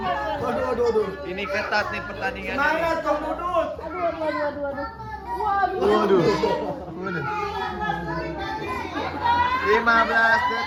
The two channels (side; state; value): both; identical; correlation 1.00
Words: Waduh. Ini ketat nih pertandingan ini. Semangat Kong Dudut. Waduh. 15